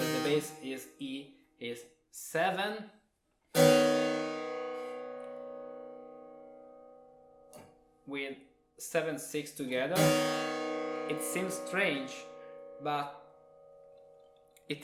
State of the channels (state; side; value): identical; both; correlation 1.00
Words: the bass is E, is 7 with 7/6 together. It seems strange, but it